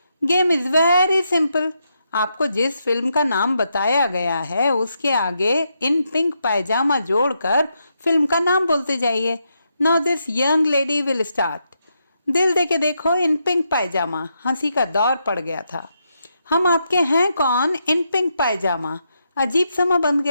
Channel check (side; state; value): both; inverted; correlation -0.81